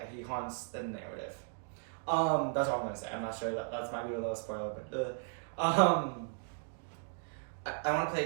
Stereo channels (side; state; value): left; silent; 54 dB below the other